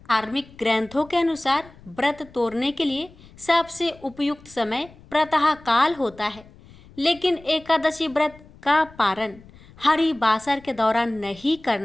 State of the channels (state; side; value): noise; left; rumble, 23 dB below the sound